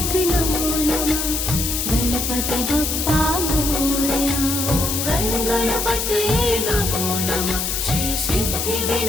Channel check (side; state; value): left; noise; hiss, 1 dB below the sound